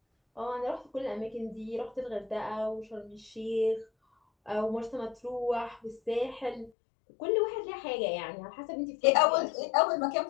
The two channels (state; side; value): drops out; right; at 6.7 s